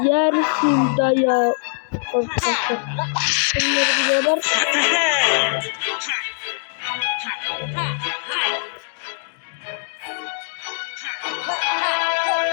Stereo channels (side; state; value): right; silent; digital silence